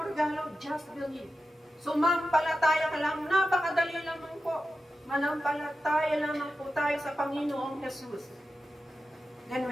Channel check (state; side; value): normal; both; correlation 0.91